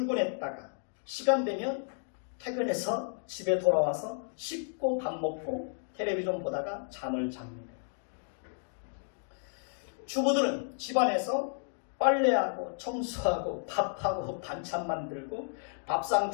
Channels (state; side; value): silent; right; digital silence